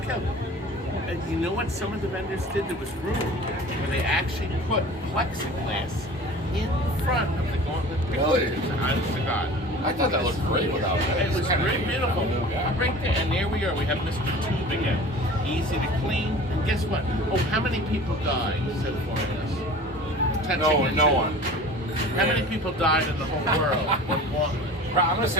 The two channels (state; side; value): normal; both; correlation 0.41